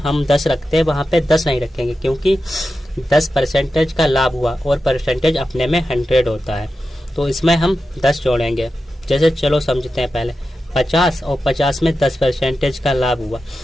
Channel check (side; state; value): both; normal; correlation 0.91